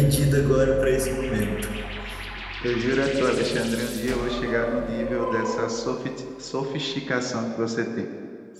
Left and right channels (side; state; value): both; identical; correlation 1.00